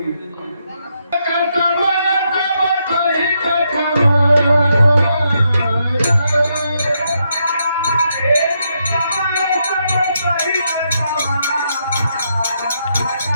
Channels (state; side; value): inverted; both; correlation -0.79